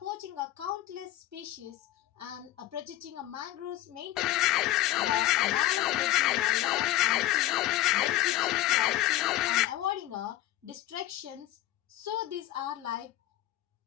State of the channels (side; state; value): right; quieter; 14.9 dB